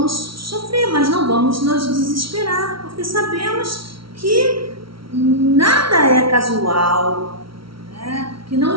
sofrer, mas não vamos nos desesperar, porque sabemos que nada é casual, né? Que não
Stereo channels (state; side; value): late; left; 0.75 ms